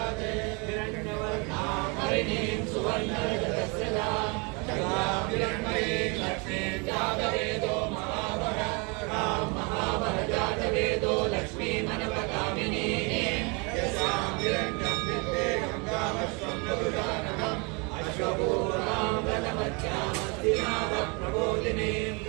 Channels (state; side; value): quieter; left; 31.0 dB